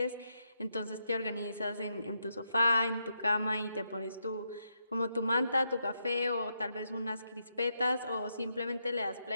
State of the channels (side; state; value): both; inverted; correlation -0.82